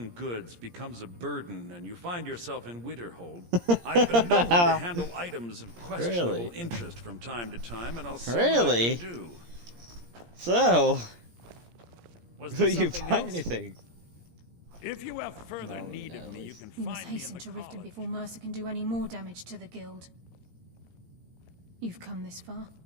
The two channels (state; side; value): late; left; 17 ms